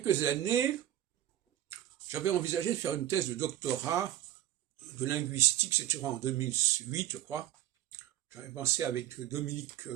années, j'avais envisagé de faire une thèse de doctorat de linguistique, c'était en 2008, je crois. J'avais pensé avec Dominique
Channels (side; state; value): left; quieter; 12.9 dB